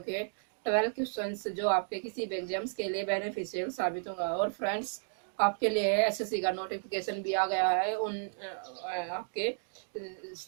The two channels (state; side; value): silent; left; digital silence